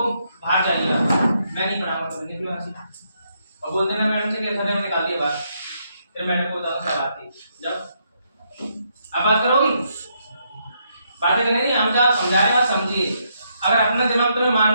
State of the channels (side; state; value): both; inverted; correlation -0.76